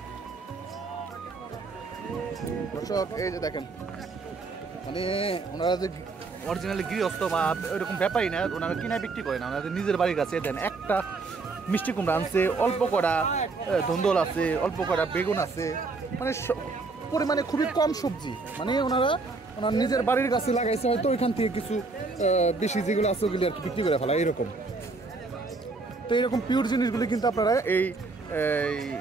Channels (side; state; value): left; quieter; 3.9 dB